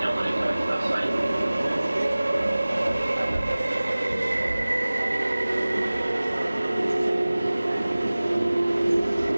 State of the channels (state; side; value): inverted; both; correlation -0.99